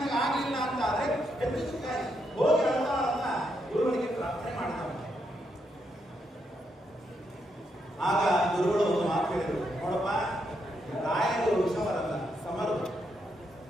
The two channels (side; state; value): both; normal; correlation 0.80